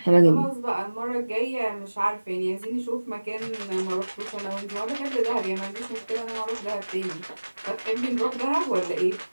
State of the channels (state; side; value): inverted; both; correlation -1.00